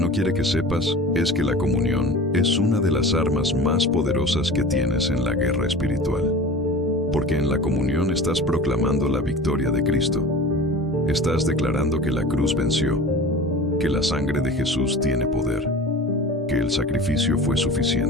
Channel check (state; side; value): normal; both; correlation 0.37